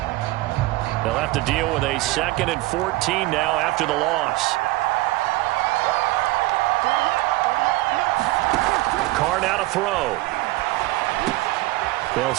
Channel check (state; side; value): quieter; left; 19.4 dB